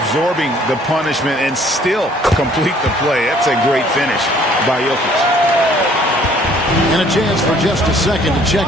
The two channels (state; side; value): normal; both; correlation 0.59